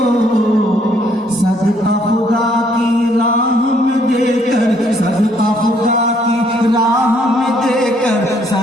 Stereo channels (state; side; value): normal; both; correlation 0.66